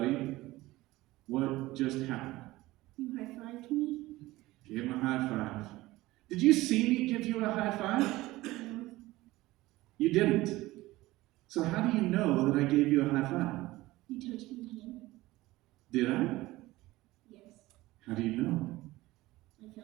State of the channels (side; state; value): left; quieter; 18.4 dB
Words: what just happened? You high-fived me? Give him a high five. Did you see me give you a high five? No. You didn't. So how do you know that I gave you a high five? You touched my hand? Did I? Yes. How do you know? I